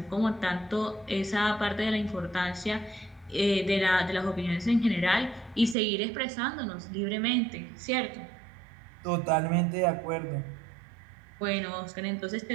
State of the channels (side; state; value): left; drops out; at 5.8 s